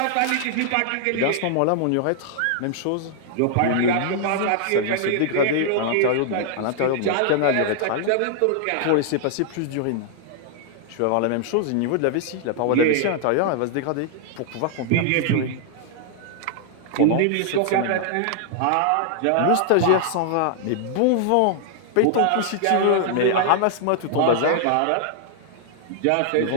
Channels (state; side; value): different; both; correlation 0.00